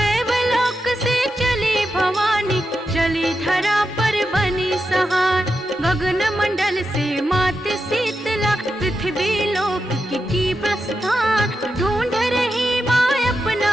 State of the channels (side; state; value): both; normal; correlation 0.88